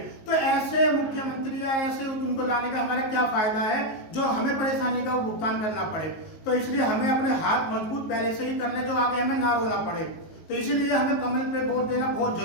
तो ऐसे मुख्यमंत्री या ऐसे उनको लाने का हमारा क्या फायदा है, जो हमें परेशानी का भुगतान करना पड़े। तो इसलिए हमें अपने हाथ मजबूत पहले से ही करने, जो आगे हमें ना रोना पड़े। तो इसीलिए हमें कमल पे वोट देना बहुत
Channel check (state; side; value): late; right; 19 ms